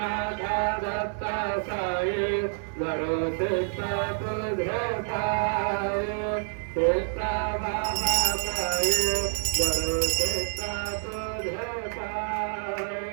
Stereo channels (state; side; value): silent; left; digital silence